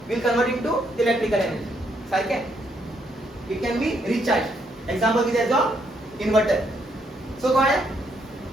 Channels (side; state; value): both; normal; correlation 0.74